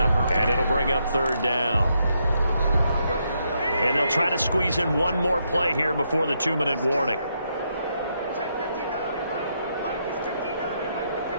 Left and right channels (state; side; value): inverted; both; correlation -0.78